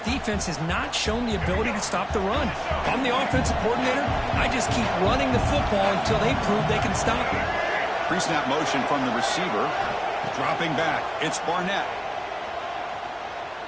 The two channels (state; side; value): identical; both; correlation 1.00